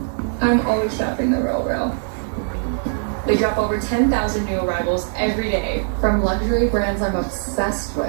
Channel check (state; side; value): silent; left; 65 dB below the other